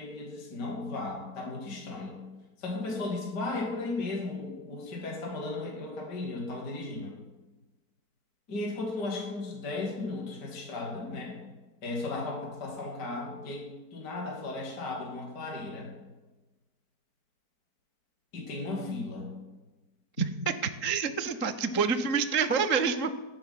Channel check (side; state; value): right; late; 4.5 ms